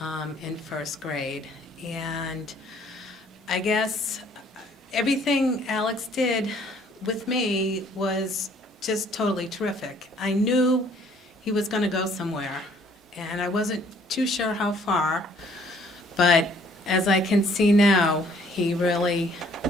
in first grade. And I guess everything Alex did with me was just totally terrific. I knew he was going to go somewhere, and I wasn't too sure how far, but as I can see now, he really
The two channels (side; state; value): both; normal; correlation 0.61